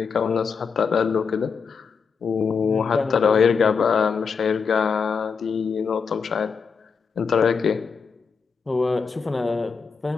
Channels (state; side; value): quieter; right; 5.7 dB